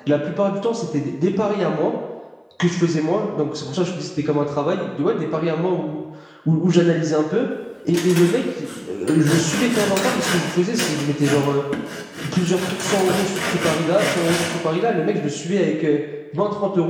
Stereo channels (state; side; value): identical; both; correlation 1.00